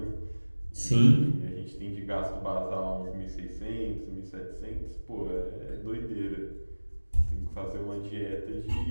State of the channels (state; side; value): inverted; both; correlation -1.00